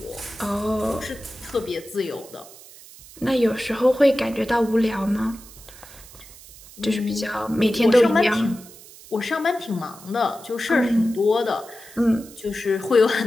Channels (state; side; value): noise; right; hiss, 20 dB below the sound